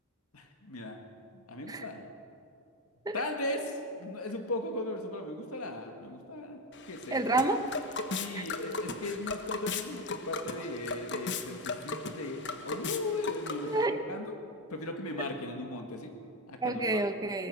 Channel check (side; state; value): both; normal; correlation 0.14